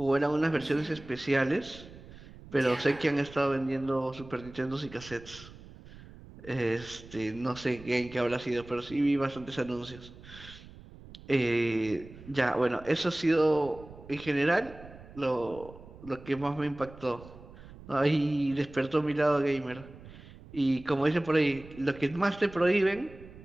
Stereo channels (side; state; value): right; noise; rumble, 18 dB below the sound